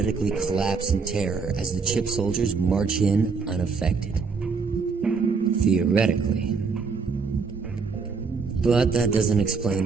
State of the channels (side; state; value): left; quieter; 5.0 dB